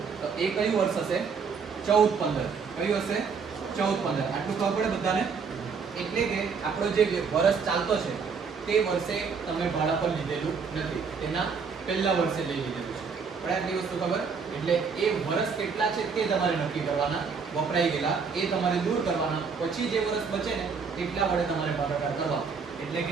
તો એ કયું વર્ષ હશે? 14/15. કયું હશે? 14/15. આટલું ખબર પડે બધાને? એટલે કે આપણો જે વર્ષ ચાલતો છે તે વર્ષે તમે ભાડા પર લીધેલું નથી, તેના પહેલા વર્ષે લઈ લીધેલું છે. પણ આટલી વસ્તુ ખબર. એટલે એ વર્ષ કેટલા છે તે તમારે નક્કી કરવાના, વપરાઈ ગયેલા એ તમારે દૂર કરવાના, પછી જે વર્ષ બચે ને એટલા વડે તમારે ભાગાકાર કરવા. એટલે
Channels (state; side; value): quieter; left; 5.6 dB